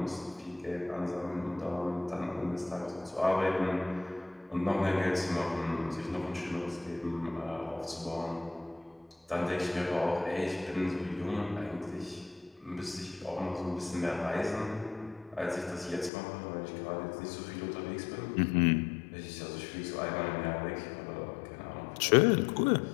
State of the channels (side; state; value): right; drops out; at 16.1 s